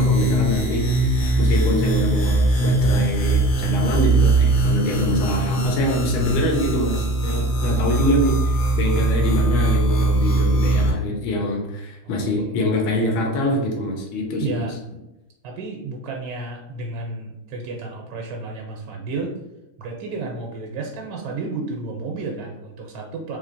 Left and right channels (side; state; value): both; normal; correlation 0.39